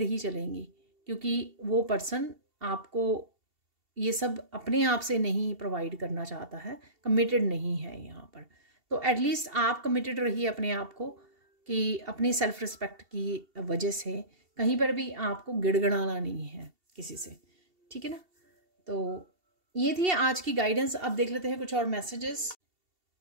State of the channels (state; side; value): late; left; 2.7 ms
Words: ही चलेंगी, क्योंकि वो पर्सन आपको ये सब अपने आप से नहीं प्रोवाइड करना चाहता है, कमिटेड नहीं है यहाँ पर। तो एटलीस्ट आप कमिटेड रहिए अपने आप को, कि अपनी सेल्फ रिस्पेक्ट की वजह से कहीं पर भी आपको गिड़गिड़ाना नहीं है किसी से, ठीक है ना। तो ये थी आज की गाइडेंस। अब देख लेते हैं कुछ और मैसेजेस।